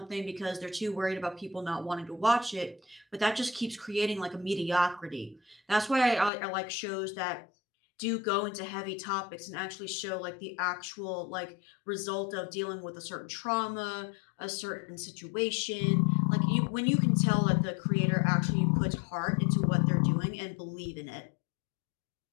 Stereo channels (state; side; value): drops out; right; at 6.3 s